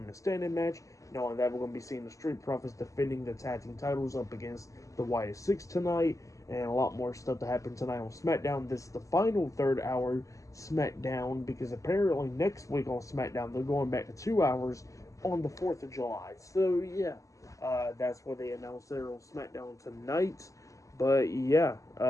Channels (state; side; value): late; right; 0.16 ms